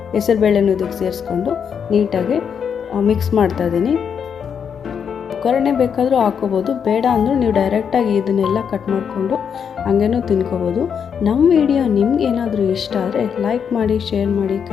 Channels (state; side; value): quieter; right; 7.3 dB